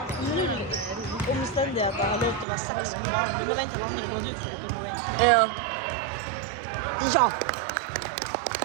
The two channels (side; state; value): left; drops out; at 2.5 s